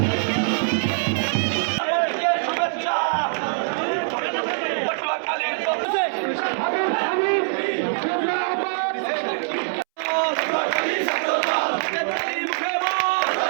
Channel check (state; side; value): silent; left; 63 dB below the other